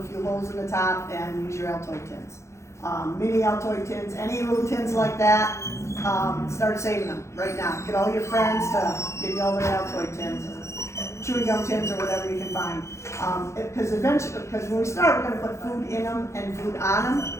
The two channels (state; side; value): late; right; 0.14 ms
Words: few holes in the top and use your Altoid tins. Mini Altoid tins, any little tins like that, start saving them right now. Get all your friends to give you all their Altoid tins, or chewing gum tins, or whatever you can find. Because when we start, we're going to put food in them and food on them.